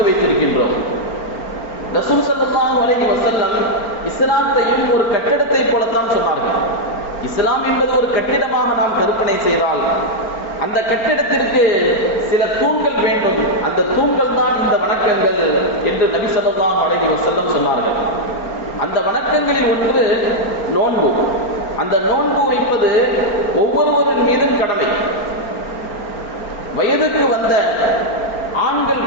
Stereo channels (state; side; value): late; right; 4.4 ms